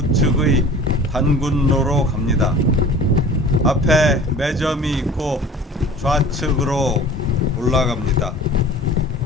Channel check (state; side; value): normal; both; correlation 0.44